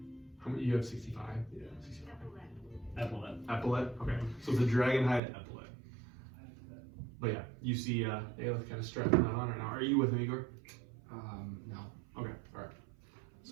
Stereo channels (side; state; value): left; drops out; at 5.2 s